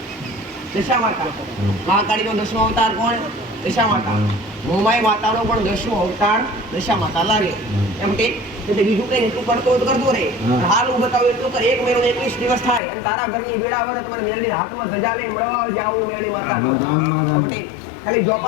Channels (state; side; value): drops out; right; at 12.8 s